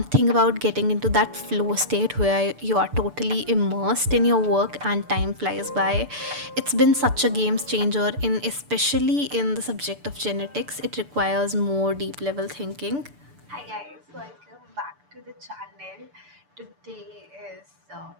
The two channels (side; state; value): left; late; 6.9 ms